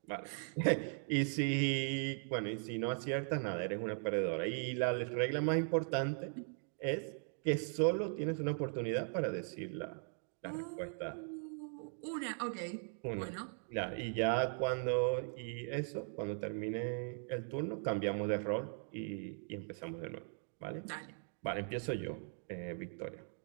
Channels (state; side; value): silent; left; 52 dB below the other